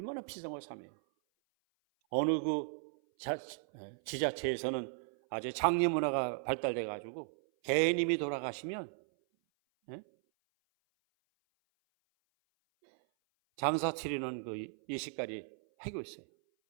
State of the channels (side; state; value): left; silent; 54 dB below the other